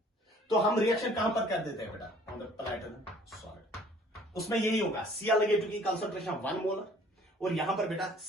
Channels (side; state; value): both; normal; correlation 0.54